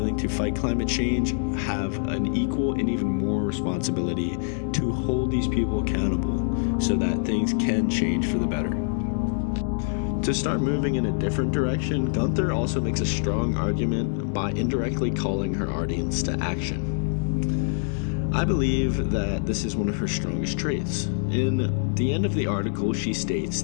to fight climate change have an equal and even more responsibility to hold these people accountable so that things can change for the better. To start moving in a different direction, Guenther also makes a strong argument by indirectly calling her audience to action. I believe that this is one of her strongest traits. In the end of the article, she states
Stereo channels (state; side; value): silent; right; digital silence